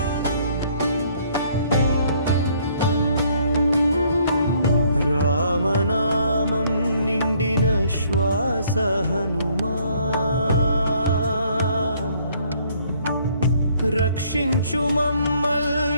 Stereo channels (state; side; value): inverted; both; correlation -0.64